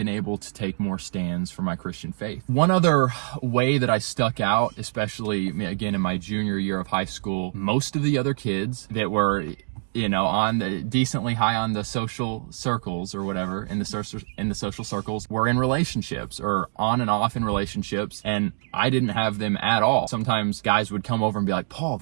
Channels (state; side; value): silent; left; digital silence